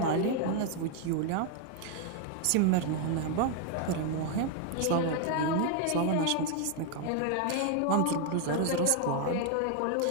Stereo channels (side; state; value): both; different; correlation 0.00